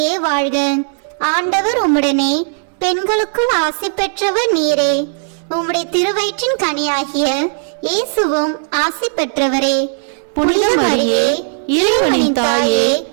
வாழ்க, ஆண்டவர் உம்முடனே, பெண்களுக்குள் ஆசி பெற்றவர் நீரே. உம்முடைய திருவயிற்றின் கனியாகிய இயேசுவும் ஆசி பெற்றவரே. புனித மரியே, இறைவனின் தாயே,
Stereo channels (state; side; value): silent; left; 69 dB below the other